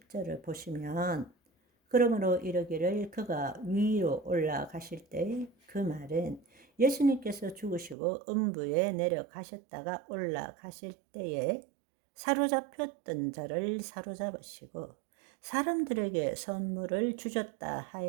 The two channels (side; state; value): left; drops out; at 8.0 s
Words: 보시면 그러므로 이르기를 그가 위로 올라가실 때 그 말은 예수님께서 죽으시고 음부에 내려가셨다가 올라가실 때에 사로잡혔던 자를 사로잡으시고 사람들에게 선물을 주셨다